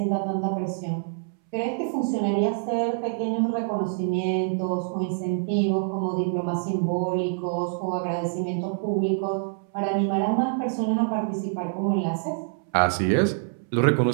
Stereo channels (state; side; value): silent; left; 61 dB below the other